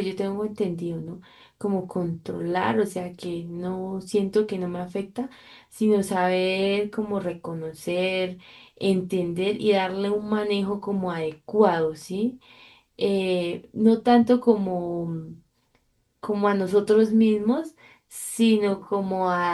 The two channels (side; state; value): both; identical; correlation 1.00